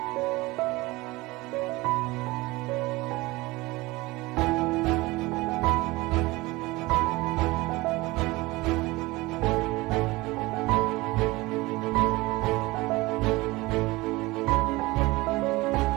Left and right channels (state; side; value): quieter; left; 21.4 dB